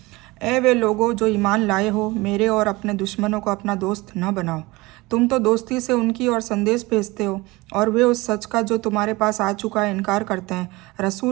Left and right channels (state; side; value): quieter; left; 22.1 dB